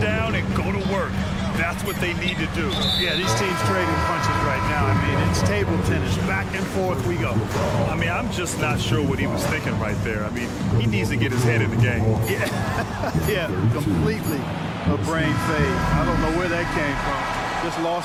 down and go to work. That's what they need to do. Yeah, these teams trading punches right now. I mean, it's table tennis. Back and forth we go. I mean, I'm just not sure what he was thinking right there. I mean, he needs to get his head in the game. Yeah, completely a brain fade. I don't know where that came from. Just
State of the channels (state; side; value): identical; both; correlation 1.00